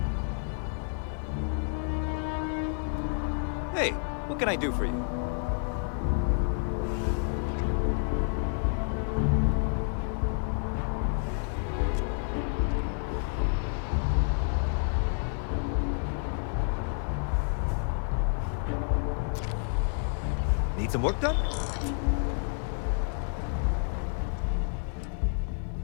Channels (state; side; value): silent; right; 58 dB below the other